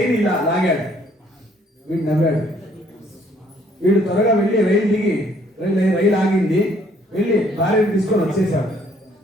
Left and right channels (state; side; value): normal; both; correlation 0.63